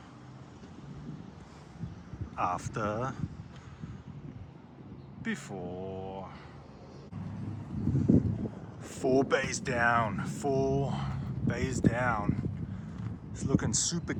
after, before. 4 bays down, 4 bays down. It's looking super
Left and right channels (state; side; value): identical; both; correlation 1.00